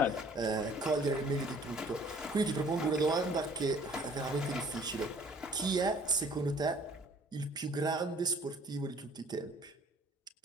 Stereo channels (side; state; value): both; normal; correlation 0.54